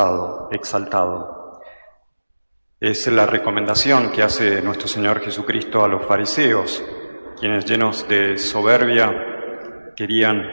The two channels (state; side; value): inverted; both; correlation -1.00